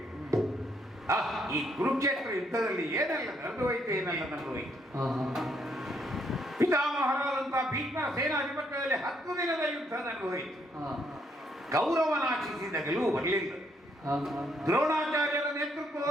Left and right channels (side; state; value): both; normal; correlation 0.72